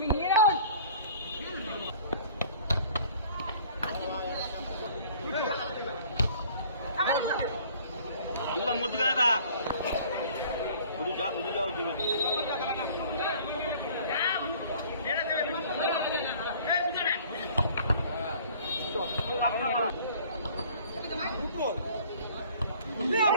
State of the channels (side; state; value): both; inverted; correlation -0.51